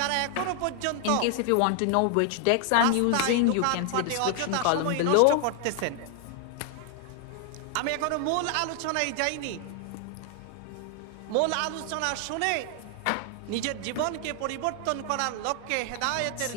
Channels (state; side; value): different; both; correlation 0.00